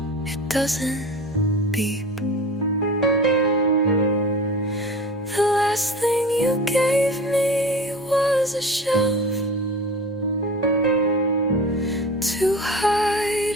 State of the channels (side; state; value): both; normal; correlation 0.35